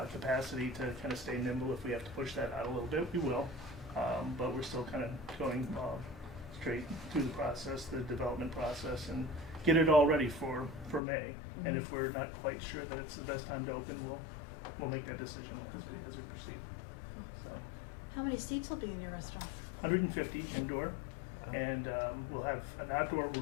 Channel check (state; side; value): drops out; right; at 11.0 s